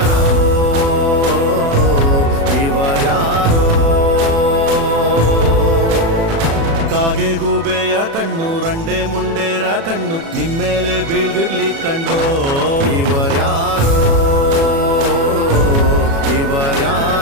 ಇವರ್ಯಾರೋ ಕಾಗೆ ಗೂಬೆಯ ಕಣ್ಣು ರಂಡೆ ಮುಂಡೇರ ಕಣ್ಣು ನಿಮ್ಮೇಲೆ ಬೀಳ್ದಿರ್ಲಿ ಕಂಡ್ರೋ ಇವರ್ಯಾರೋ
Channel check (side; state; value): left; late; 36 ms